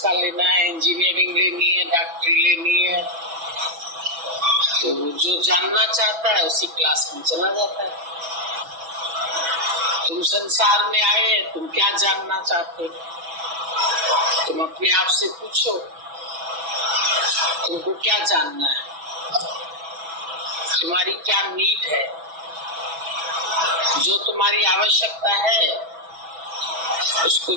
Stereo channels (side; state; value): left; late; 6.1 ms